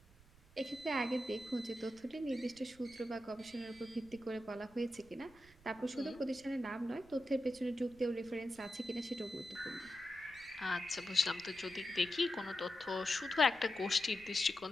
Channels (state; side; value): noise; right; rumble, 24 dB below the sound